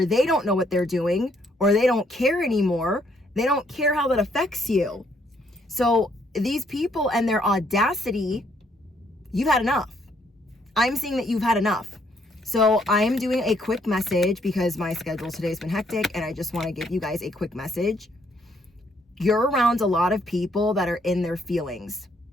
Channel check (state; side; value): normal; both; correlation 0.70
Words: they don't know what they're doing, or they don't care anymore, they don't care how that affects you. So these people and their audacity, you've had enough. I'm seeing that you've had enough. So I'm doing a quick message because my schedule today has been hectic, and I just want to give you guys a quick message. You're around a lot of people that are in their feelings.